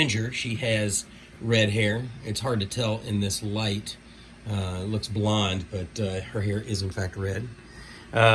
she has red hair. It's hard to tell in this light. It looks blonde, but her hair is in fact red.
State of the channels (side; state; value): both; identical; correlation 1.00